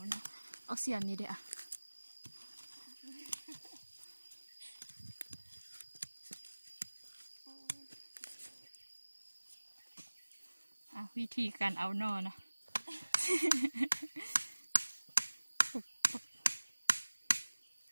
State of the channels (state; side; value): inverted; both; correlation -1.00